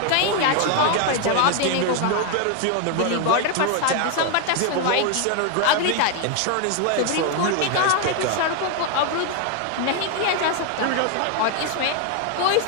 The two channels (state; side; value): different; both; correlation 0.01